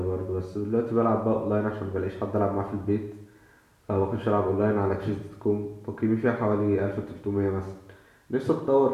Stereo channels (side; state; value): both; identical; correlation 1.00